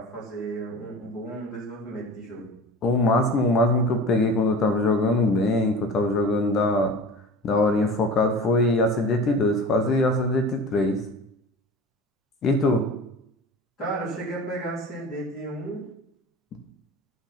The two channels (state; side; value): normal; both; correlation 0.36